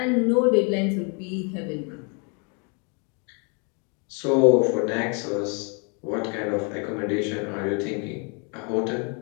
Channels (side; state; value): right; quieter; 36.3 dB